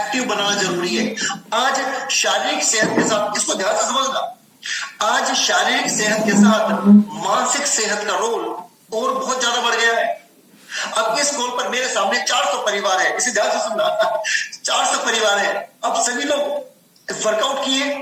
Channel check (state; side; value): identical; both; correlation 1.00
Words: बनाना जरूरी है। आज शारीरिक सेहत के साथ, इसको ध्यान से समझना, आज शारीरिक सेहत के साथ मानसिक सेहत का रोल और बहुत ज्यादा बढ़ गया है। अब इस कॉल पर मेरे सामने 400 परिवार है, इसे ध्यान से सुनना 400 परिवार है। अब सभी लोग वर्कआउट किए,